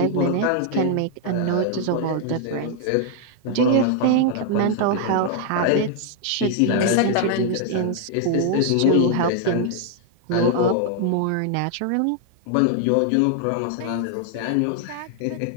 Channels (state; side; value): different; both; correlation 0.00